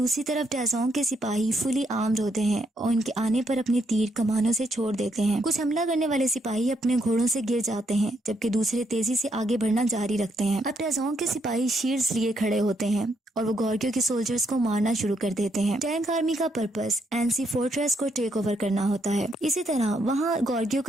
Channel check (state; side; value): normal; both; correlation 0.76